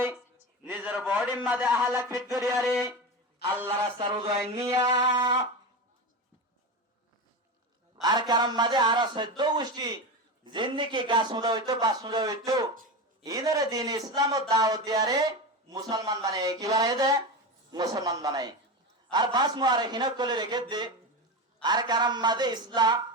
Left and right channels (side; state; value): both; normal; correlation 0.21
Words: নিজের বডির মাঝে আহলাক ফিট করিয়ারে আল্লাহ রাস্তার উদয় নিয়া আর কারণ মাঝে আর 14 গোষ্ঠী জিন্দিগি গাছ মুদা হইতো বাস মুদা হইতো ইনারে দিন ইসলাম ও দাওয়াত দিয়ারে মুসলমান বানায় কি বানায় দে মুসলমান বানায় আর বাস মুআররিখিন কলে রেখে দে আর কারণ মাঝে ইসলাম